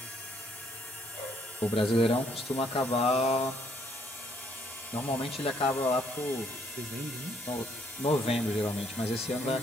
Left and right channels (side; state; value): both; normal; correlation 0.67